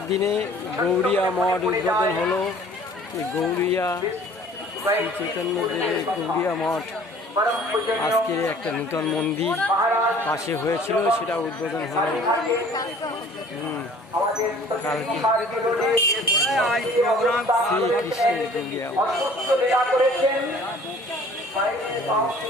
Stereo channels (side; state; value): both; normal; correlation 0.51